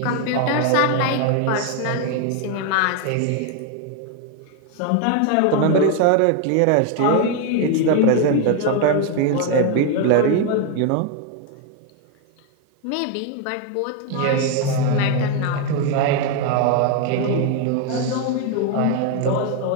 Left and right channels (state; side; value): different; both; correlation 0.01